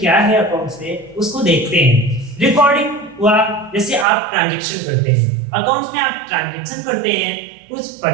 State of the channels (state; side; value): drops out; left; at 4.0 s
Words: है अकाउंट्स में, उसको देखते हैं। रिकॉर्डिंग हुआ जैसे आप ट्रांजैक्शन करते हैं, अकाउंट्स में आप ट्रांजैक्शन करते हैं, कुछ